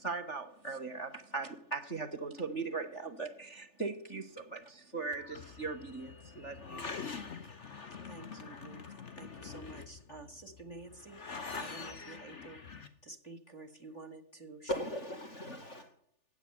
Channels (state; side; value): late; right; 3.4 ms